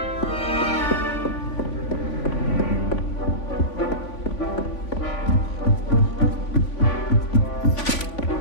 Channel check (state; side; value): late; right; 3.5 ms